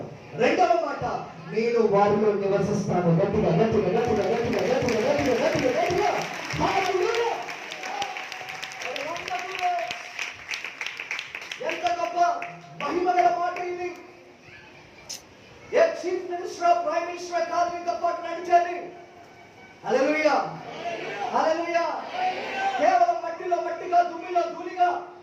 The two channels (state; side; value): identical; both; correlation 1.00